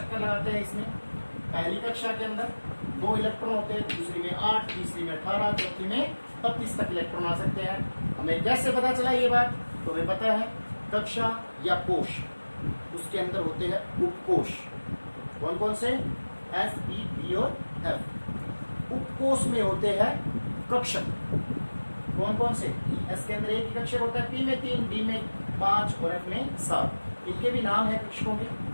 लगाते हैं। इसमें पहली कक्षा के अंदर 2 इलेक्ट्रॉन होते हैं, दूसरी में 8, तीसरी में 18, चौथी में 32 तक इलेक्ट्रॉन आ सकते हैं। हमें कैसे पता चला ये बात? तो हमें पता है कक्षा या कोश, उसके अंदर होते हैं उपकोश। कौन कौन से? S, E, D और F। उपकोश में होते हैं कक्षक। कौन कौन से? S के अंदर एक ही कक्षक होता है, P में 3, D में 5 और F में 7। इनके भी नाम है कक्षकों के,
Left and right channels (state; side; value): inverted; both; correlation -1.00